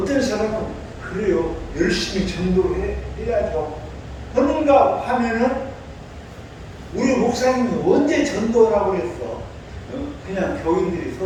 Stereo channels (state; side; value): identical; both; correlation 1.00